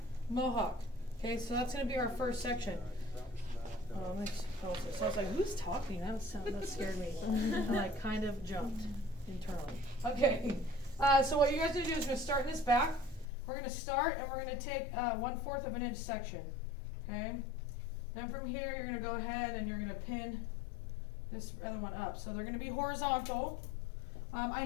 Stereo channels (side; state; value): right; drops out; at 13.2 s